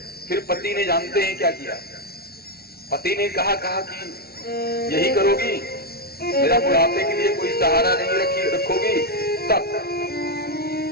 फिर पति ने जानते हैं क्या किया? पति ने कहा कि यही करोगी, मेरा बुढ़ापे के लिए कोई सहारा नहीं रखोगी तब?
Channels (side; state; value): right; late; 0.45 ms